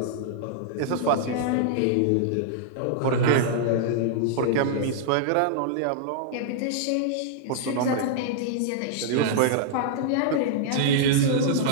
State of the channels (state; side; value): different; both; correlation -0.01